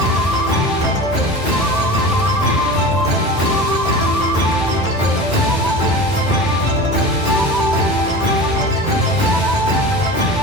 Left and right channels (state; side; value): normal; both; correlation 0.33